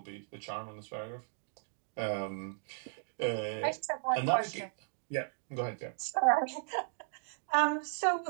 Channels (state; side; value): silent; left; digital silence